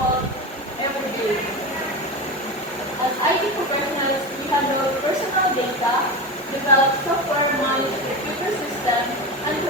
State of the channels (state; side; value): normal; both; correlation 0.23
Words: every day. As IT professionals, we handle personal data, develop software, manage computer systems, and